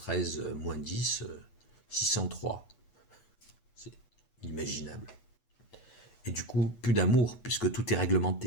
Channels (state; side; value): late; right; 8.1 ms